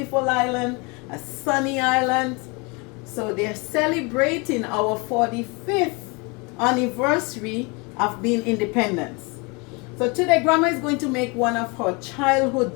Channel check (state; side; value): quieter; right; 29.2 dB